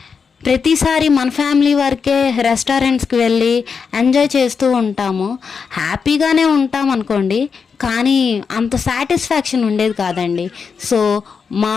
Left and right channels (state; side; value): quieter; right; 5.8 dB